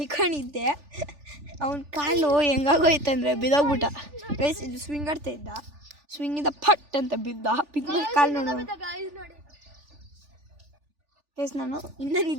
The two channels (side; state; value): left; late; 3.4 ms